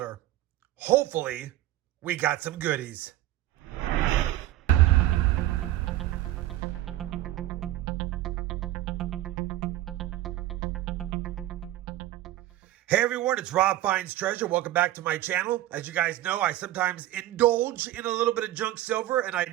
Hopefully, we got some goodies. Hey everyone, it's RobFindsTreasure. Welcome back to my channel. As you guys know, I sometimes indulge in a little bit of junk silver, and I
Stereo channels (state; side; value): quieter; left; 14.7 dB